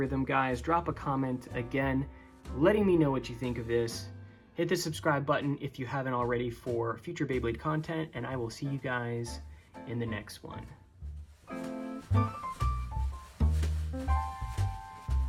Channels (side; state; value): both; identical; correlation 1.00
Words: guys. Drop a comment again, letting me know what you think of this. Hit the subscribe button if you haven't already for future Beyblade content, and I will see you guys in the next one.